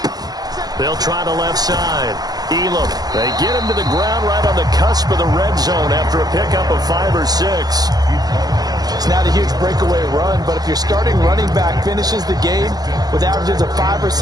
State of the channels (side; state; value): left; late; 0.19 ms